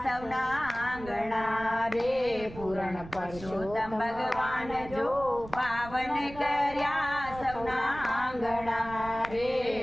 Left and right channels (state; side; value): noise; right; rumble, 15 dB below the sound